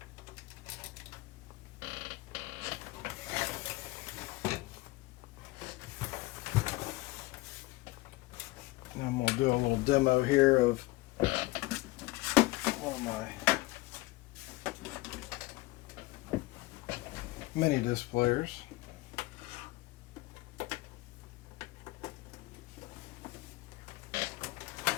And I'm going to do a little demo here of one of my mini disc players.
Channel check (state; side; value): quieter; right; 20.7 dB